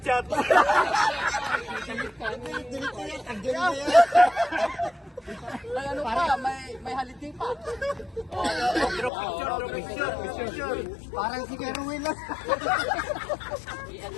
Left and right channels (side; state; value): right; drops out; at 9.1 s